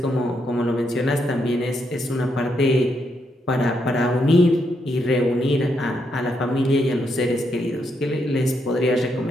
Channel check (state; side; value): normal; both; correlation 0.78